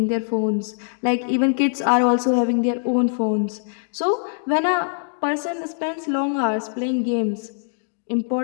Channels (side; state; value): right; silent; digital silence